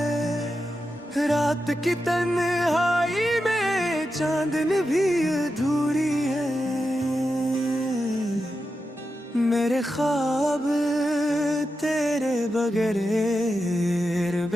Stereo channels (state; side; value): normal; both; correlation 0.89